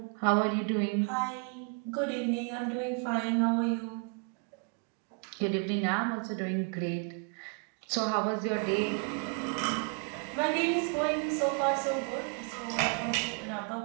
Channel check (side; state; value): left; quieter; 38.6 dB